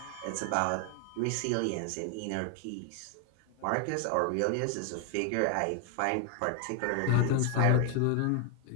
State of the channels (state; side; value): different; both; correlation 0.00